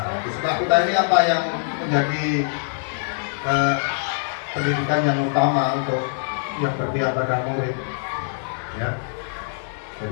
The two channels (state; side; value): silent; right; digital silence